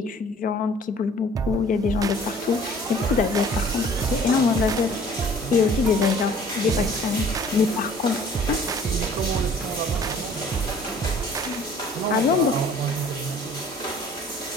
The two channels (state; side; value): normal; both; correlation 0.52